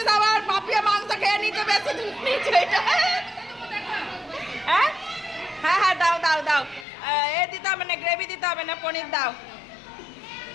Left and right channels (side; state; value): right; drops out; at 6.9 s